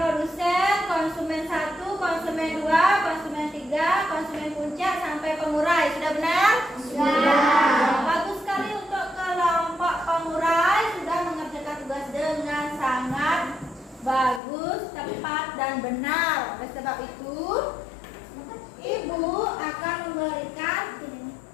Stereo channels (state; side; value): drops out; right; at 14.4 s